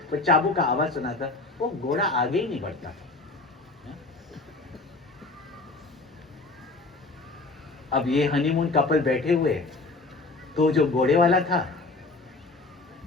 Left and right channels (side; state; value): right; quieter; 3.4 dB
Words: पर चाबुक का आवाज सुना था, वो घोड़ा आगे ही नहीं बढ़ता था। अब ये हनीमून कपल बैठे हुए, तो जो घोड़े वाला था